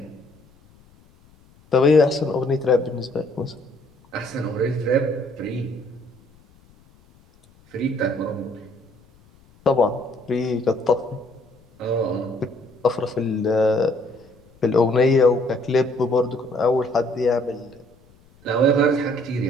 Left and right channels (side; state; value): left; noise; rumble, 29 dB below the sound